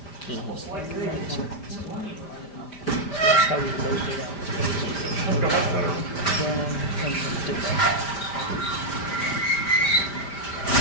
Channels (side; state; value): right; late; 5.0 ms